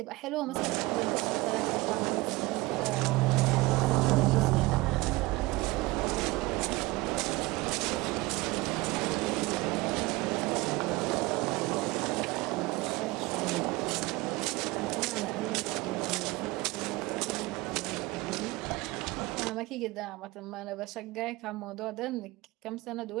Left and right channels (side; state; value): left; quieter; 21.7 dB